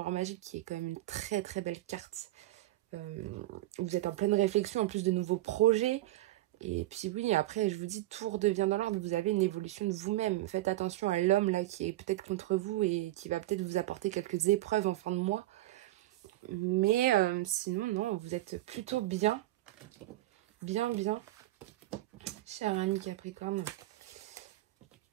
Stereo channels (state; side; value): quieter; left; 16.4 dB